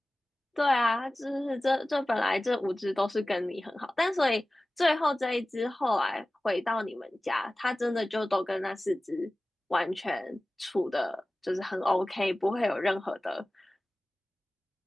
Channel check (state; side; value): normal; both; correlation 0.97